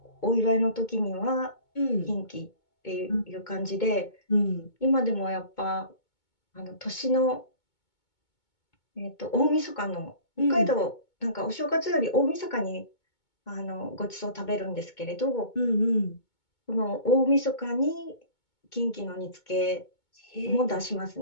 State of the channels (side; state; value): right; late; 2.2 ms